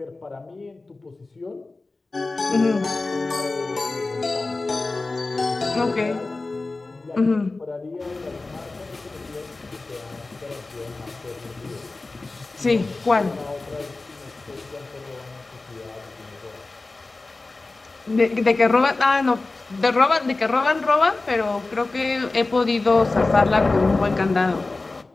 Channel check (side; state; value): right; quieter; 3.4 dB